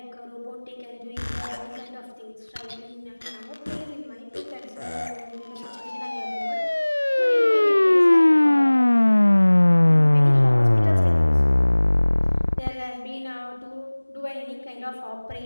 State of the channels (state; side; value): inverted; both; correlation -1.00